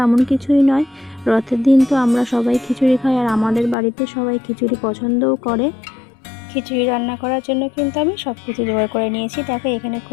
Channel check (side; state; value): right; drops out; at 3.8 s